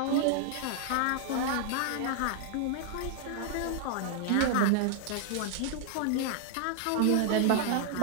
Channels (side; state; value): both; different; correlation 0.00